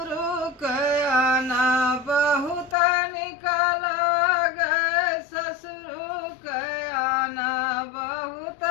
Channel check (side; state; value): right; drops out; at 2.8 s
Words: के आना बहुत निकल गए, ससुर के आना बहुत